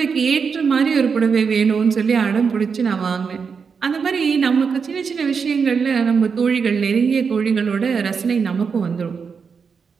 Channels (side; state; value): left; quieter; 5.8 dB